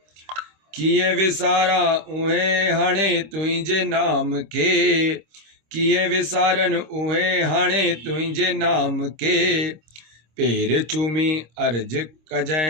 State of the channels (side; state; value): left; late; 26 ms